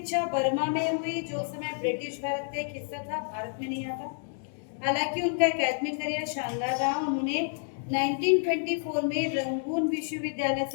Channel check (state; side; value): silent; right; digital silence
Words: बर्मा में हुई, जो उस समय ब्रिटिश भारत का एक हिस्सा था, भारत में नहीं आता। हालांकि उनका एकेडमिक करियर शानदार रहा। उन्होंने 1924 में रंगून विश्वविद्यालय